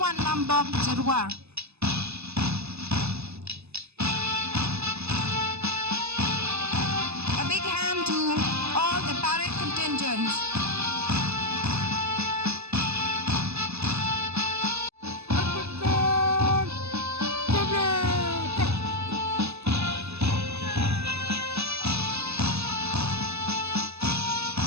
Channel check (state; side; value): late; left; 0.79 ms